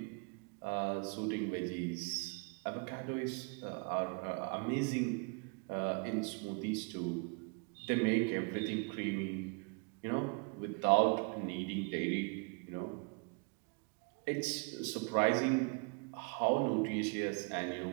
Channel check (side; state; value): left; quieter; 35.1 dB